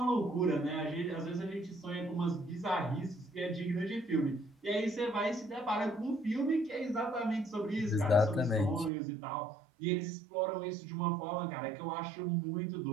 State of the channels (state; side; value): drops out; left; at 8.9 s